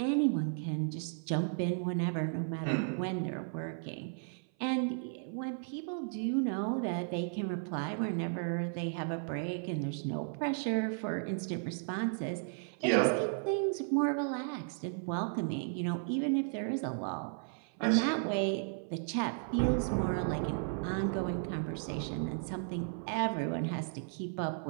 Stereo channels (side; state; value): left; silent; 55 dB below the other